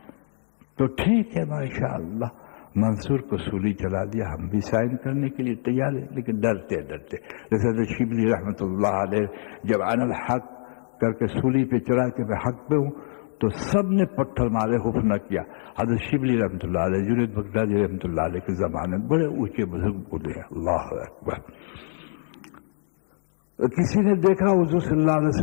تو ٹھیک ہے ماشاءاللہ منصور کو سولی چلا دیا. ہم بھی سائن کرنے کے لیے تیار ہیں لیکن ڈرتے جیسے شبلی رحمۃ اللہ علیہ جب انا الحق کر کے سولی پہ چڑھا کے میں حق پہ ہوں تو سب نے پتھر مارے، خوف نہ کیا. حضرت شبلی رحمۃ اللہ علیہ جنید بغدادی رحمۃ اللہ علیہ کے زمانے میں بڑے اونچے بزرگ بولے ہیں. اللہ اکبر. کسی نے دیکھا حضور صلی اللہ علیہ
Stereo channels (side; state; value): right; silent; digital silence